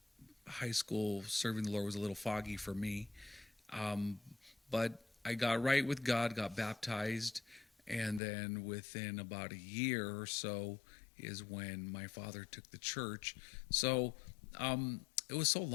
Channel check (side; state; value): right; drops out; at 8.2 s